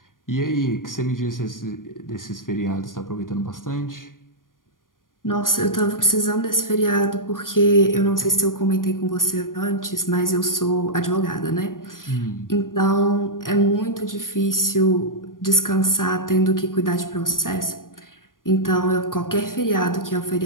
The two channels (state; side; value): late; right; 0.90 ms